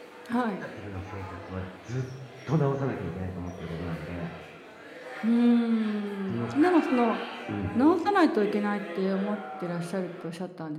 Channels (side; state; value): both; identical; correlation 1.00